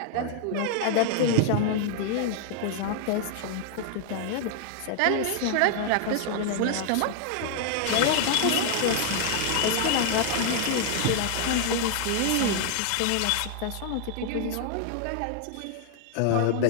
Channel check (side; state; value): both; different; correlation 0.00